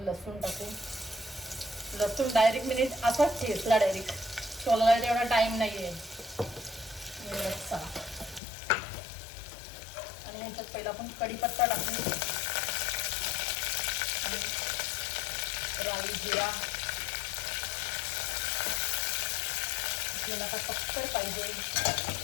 लसूण टाकू. लसूण डायरेक्ट मी असाच ठेचला, डायरेक्ट सोलायला तेवढा टाइम नाही आहे. चला आणि ह्याच्यात पहिला आपण कढीपत्ता टाकू आणि राई, जिरा. आपल्याला आता पक्कड पाहिजे.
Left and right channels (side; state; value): right; drops out; at 8.4 s